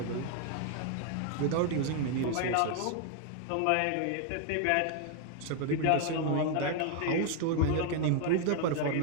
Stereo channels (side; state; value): both; different; correlation 0.00